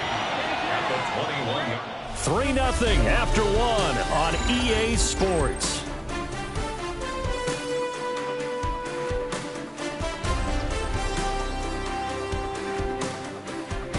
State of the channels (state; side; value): identical; both; correlation 1.00